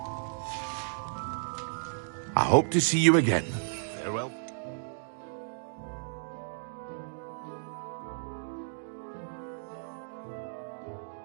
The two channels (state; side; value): silent; left; digital silence